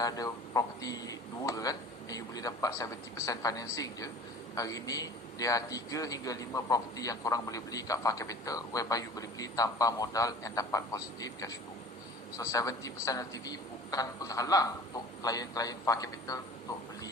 ada property 2 kan, and you boleh dapat 70% financing je, hari ni dia 3 hingga 5 property yang korang boleh beli kat Far Capital, whereby you boleh beli tanpa modal and dapat positive cash flow. So 70% LTV bukan penghalang untuk klien-klien Far Capital untuk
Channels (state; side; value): normal; both; correlation 0.43